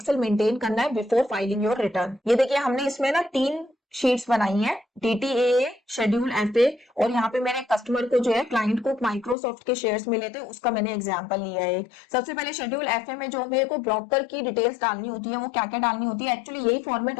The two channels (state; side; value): drops out; right; at 9.3 s